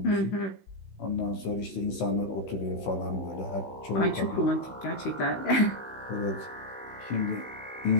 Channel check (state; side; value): late; right; 16 ms